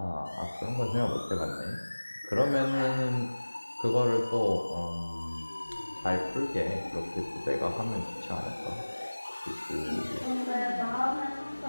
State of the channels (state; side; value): inverted; both; correlation -1.00